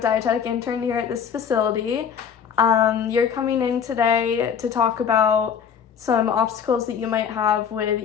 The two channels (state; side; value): quieter; right; 7.5 dB